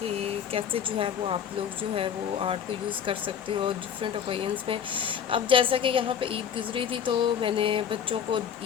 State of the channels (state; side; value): quieter; right; 8.2 dB